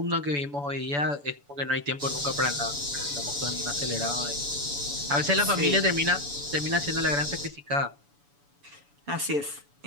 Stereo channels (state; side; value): late; left; 7.0 ms